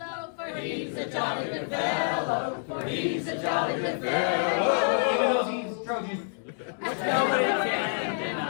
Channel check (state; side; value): silent; right; digital silence